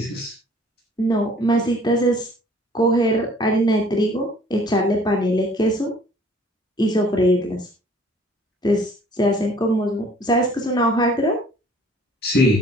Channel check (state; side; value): normal; both; correlation 0.54